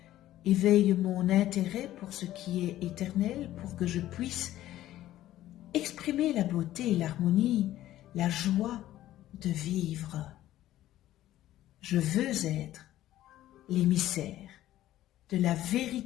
Éveille mon intérêt pour ce qui est éternel, pour que je puisse exprimer la beauté et l'harmonie, la joie de vivre. Je veux être l'émissaire de la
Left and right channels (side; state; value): right; quieter; 13.9 dB